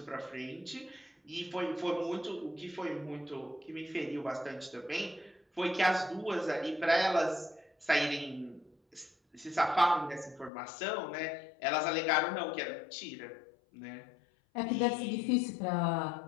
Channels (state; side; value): drops out; right; at 10.5 s